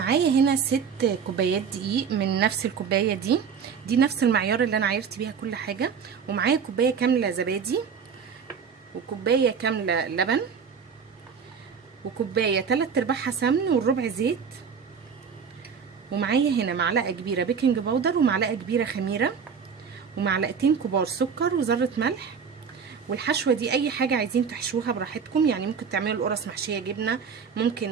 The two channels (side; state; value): left; quieter; 6.5 dB